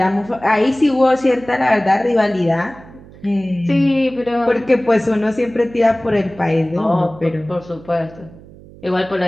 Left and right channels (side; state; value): right; noise; hum, 21 dB below the sound